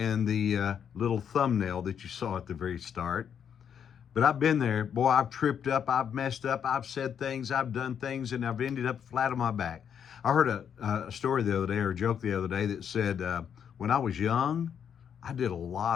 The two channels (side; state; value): right; quieter; 8.1 dB